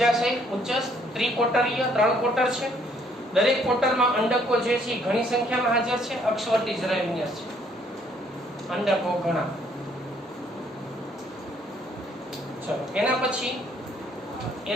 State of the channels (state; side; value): normal; both; correlation 0.65